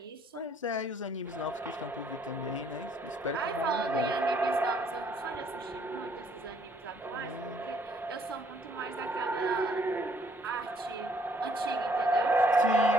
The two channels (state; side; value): normal; both; correlation 0.65